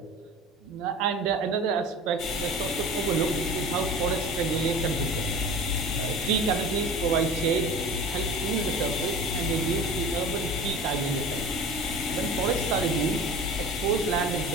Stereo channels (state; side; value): normal; both; correlation 0.37